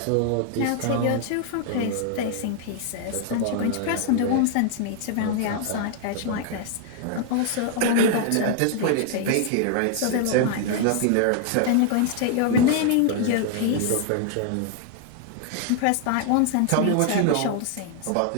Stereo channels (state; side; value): different; both; correlation 0.00